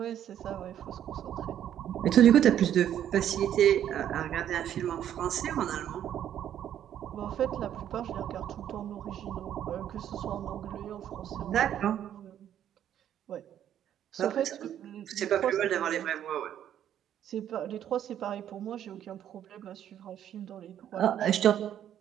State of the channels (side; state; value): left; quieter; 10.4 dB